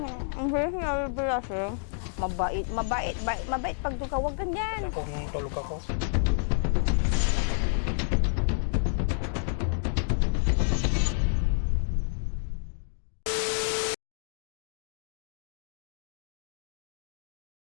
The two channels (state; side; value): silent; right; digital silence